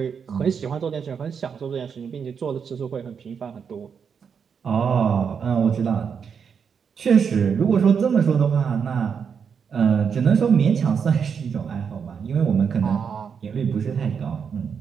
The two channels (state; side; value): quieter; left; 6.7 dB